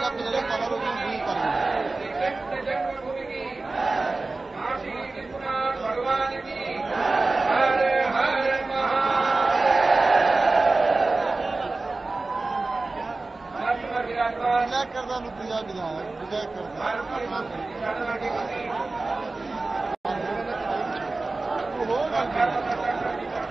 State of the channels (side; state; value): left; quieter; 3.4 dB